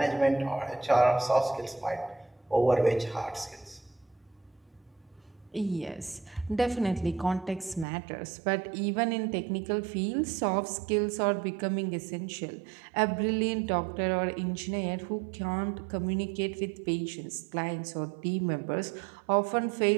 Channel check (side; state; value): left; drops out; at 7.9 s